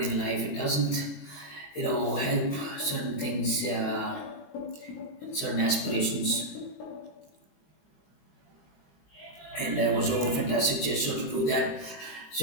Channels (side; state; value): right; late; 20 ms